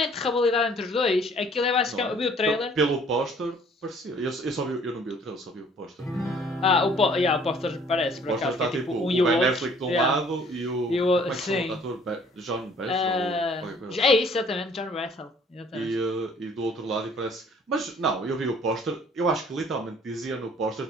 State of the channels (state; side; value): normal; both; correlation 0.57